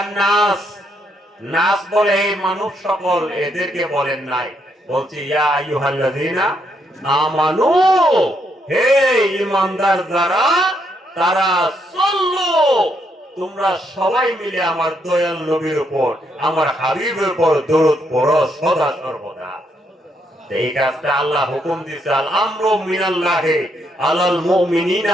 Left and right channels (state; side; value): normal; both; correlation 0.76